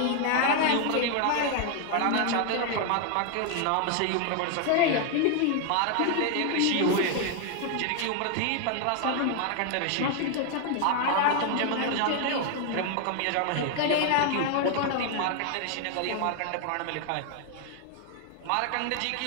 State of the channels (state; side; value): different; both; correlation 0.00